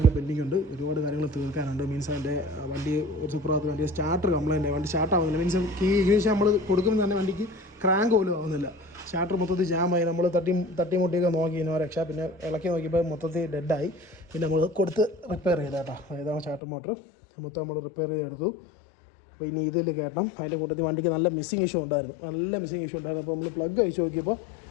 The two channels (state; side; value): drops out; right; at 16.6 s